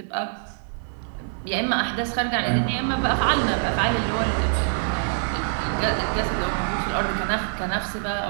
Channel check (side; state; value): left; silent; 57 dB below the other